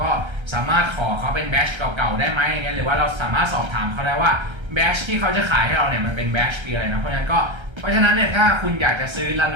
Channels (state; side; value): late; left; 1.3 ms